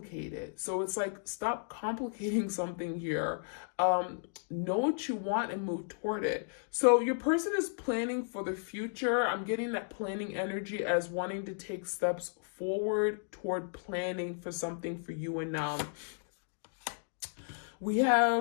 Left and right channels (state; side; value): silent; right; digital silence